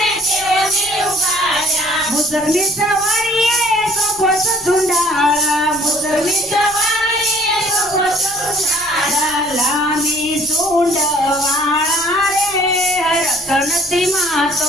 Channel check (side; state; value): left; noise; rumble, 25 dB below the sound